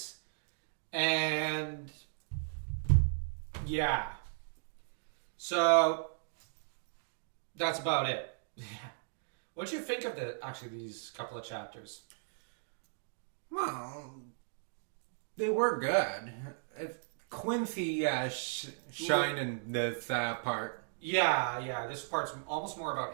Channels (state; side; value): silent; left; digital silence